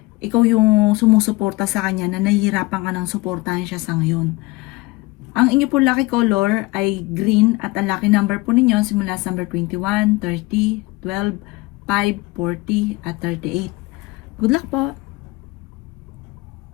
ikaw yung sumusuporta sa kanya na nahihirapan ka ng suportahan siya sa ngayon. Ang inyo po lucky color ay green at ang lucky number po ninyo simula sa number 21, 30, 12, 5, 40 at 38. Good luck po!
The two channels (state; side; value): quieter; right; 22.2 dB